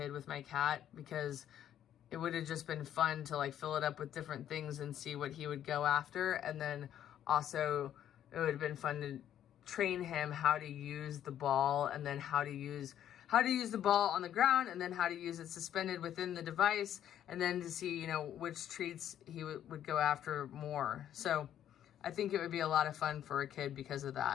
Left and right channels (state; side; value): quieter; right; 10.7 dB